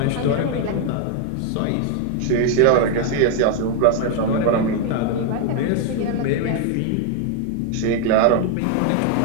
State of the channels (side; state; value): both; different; correlation 0.00